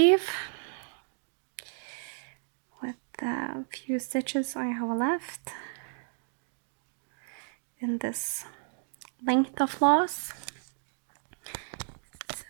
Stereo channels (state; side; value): silent; left; digital silence